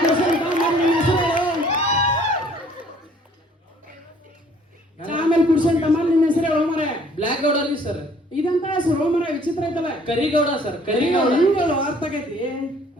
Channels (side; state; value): both; normal; correlation 0.58